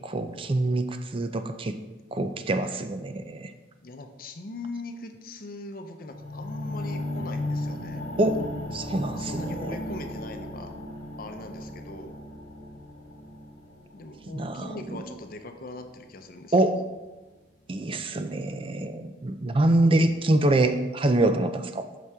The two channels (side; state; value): both; normal; correlation 0.69